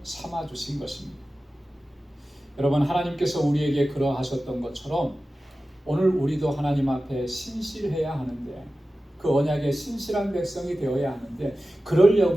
삼아 주신 것입니다. 여러분, 하나님께서 우리에게 그러하셨던 것처럼 오늘 우리도 하나님 앞에 신실해야 하는데, 그 언약의 신실한 백성이 되어야 하는데,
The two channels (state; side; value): normal; both; correlation 0.95